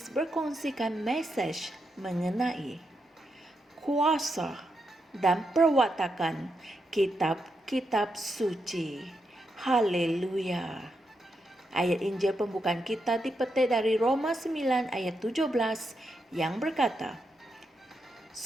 berkongsikan message mengenai kuasa dan perwatakan kitab-kitab suci. Haleluya. Ayat Injil pembukaan kita dipetik dari Roma 9 ayat 17 yang berkata,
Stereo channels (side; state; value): both; normal; correlation 0.83